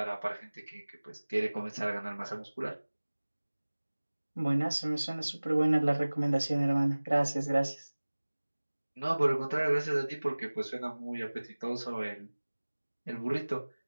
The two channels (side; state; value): both; inverted; correlation -1.00